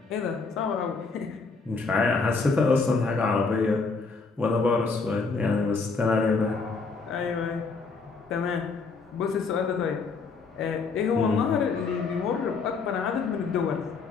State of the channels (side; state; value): right; quieter; 4.4 dB